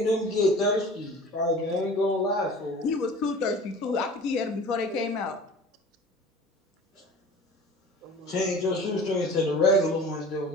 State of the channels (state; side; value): normal; both; correlation 0.42